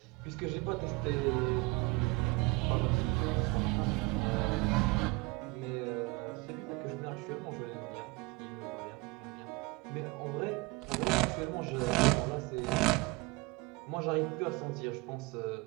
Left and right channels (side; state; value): left; quieter; 23.9 dB